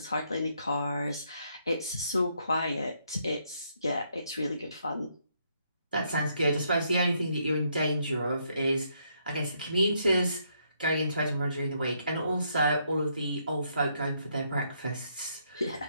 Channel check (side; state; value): both; inverted; correlation -0.74